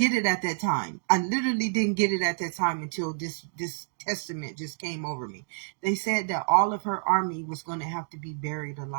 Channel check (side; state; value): left; silent; digital silence